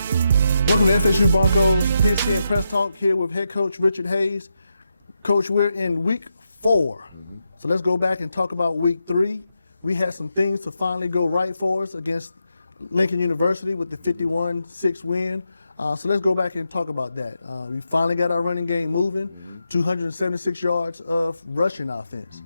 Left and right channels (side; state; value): both; inverted; correlation -0.85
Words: to FSU Broncos Pigskin Press Talk here with head coach Richard Hayes. Coach, we're in week 4. So let's go back and talk about week 3. We had some things to finally go right for us against Lincoln University with the 51-6 win. So let's go back and talk about that. We finally got our running game moving, 276 yards of rushing offense.